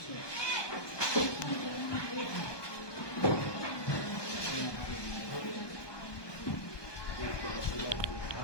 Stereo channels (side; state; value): right; late; 1.2 ms